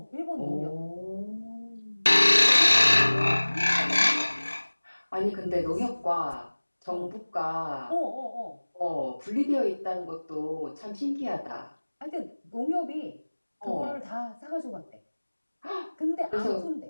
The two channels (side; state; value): both; inverted; correlation -1.00